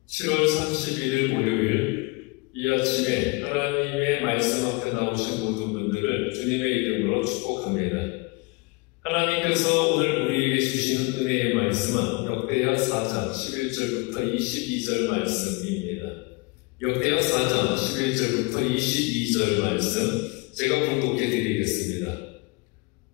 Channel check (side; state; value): right; quieter; 27.6 dB